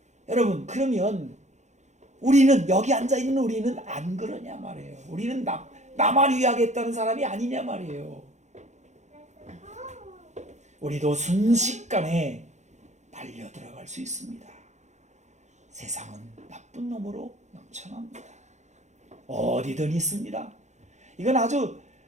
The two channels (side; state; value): left; late; 0.34 ms